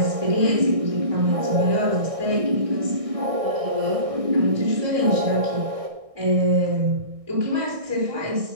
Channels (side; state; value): left; late; 1.6 ms